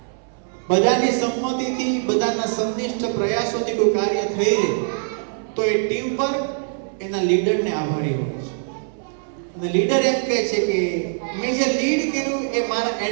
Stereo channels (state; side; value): silent; left; 64 dB below the other